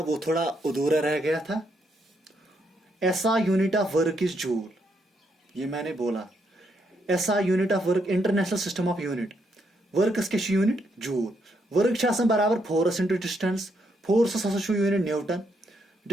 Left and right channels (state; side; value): normal; both; correlation 0.77